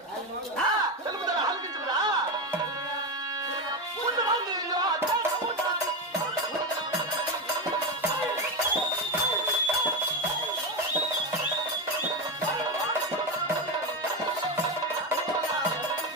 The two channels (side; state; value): both; normal; correlation 0.14